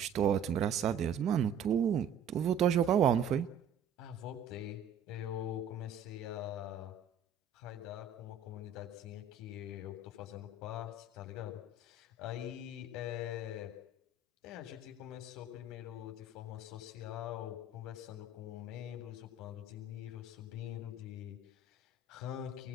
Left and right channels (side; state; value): left; quieter; 5.0 dB